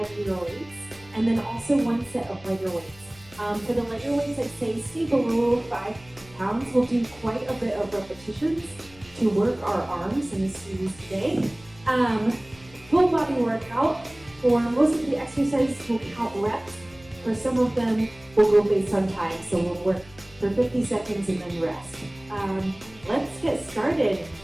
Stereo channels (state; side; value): noise; left; hum, 24 dB below the sound